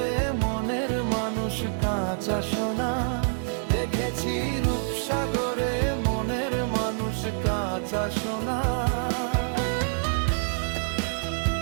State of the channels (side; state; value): left; silent; digital silence